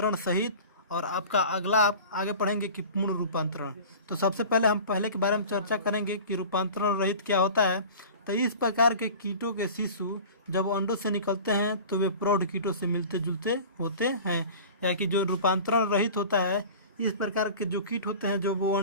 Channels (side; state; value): both; inverted; correlation -0.39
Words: सहित, और आपका अगला आप आगे पढ़ेंगे कि पूर्ण रूपांतरण। तो सबसे पहले हम पहले के बारे में चर्चा करेंगे कि रूपांतरण रहित क्या होता है। तो इस प्रकार के कीटों के शिशु जब अंडों से निकलते हैं तो वे प्रौढ़ कीटों से मिलते जुलते होते हैं। या कि जो रूपांतरण रहित होता है, इस प्रकार के जो कीट होते हैं जो वो